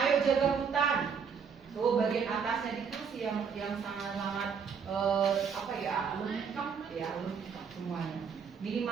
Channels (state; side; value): quieter; left; 6.4 dB